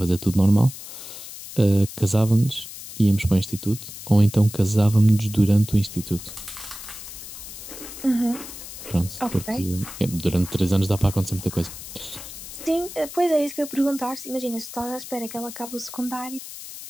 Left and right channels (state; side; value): noise; left; hiss, 12 dB below the sound